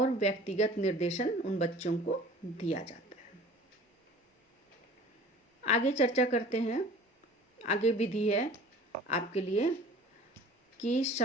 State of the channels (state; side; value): normal; both; correlation 0.45